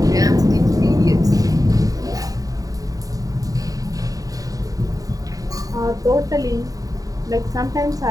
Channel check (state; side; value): late; left; 0.17 ms